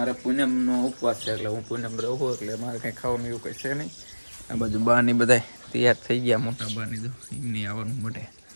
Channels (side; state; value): both; inverted; correlation -1.00